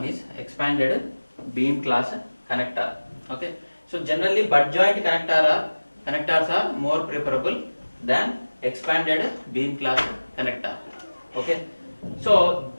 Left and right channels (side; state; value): both; inverted; correlation -1.00